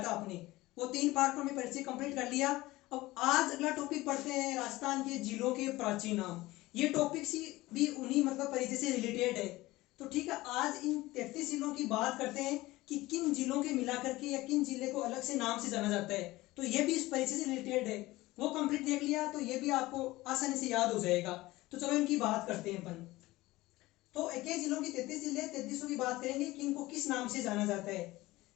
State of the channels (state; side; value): quieter; right; 18.9 dB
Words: था। अपने वो 3 पार्टों में परिचय कंप्लीट कर लिया। अब आज अगला टॉपिक पढ़ते हैं राजस्थान के जिलों के प्राचीन नाम। ये टॉपिक सी भी उन्हीं परिचय से रिलेटेड है। तो ठीक है, आज इन 33 जिलों की बात करते हैं कि किन जिलों के मिला करके या किन जिले को अलग से नाम से जाना जाता है। तो ये भी इस परिचय से रिलेटेड है। वो कंप्लीट देख लिया तो ये भी आपको आसानी से याद हो जाएगा। तो चलो इनकी बात करते हैं अपन। तो 21 जिलों की 33 जिले 33 की बात करेंगे कि इनको किस नाम से जाना जाता है।